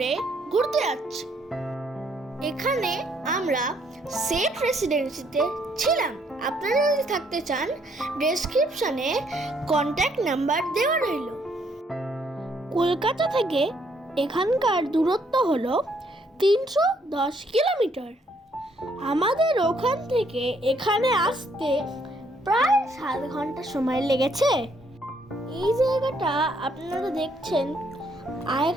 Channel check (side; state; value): both; normal; correlation 0.69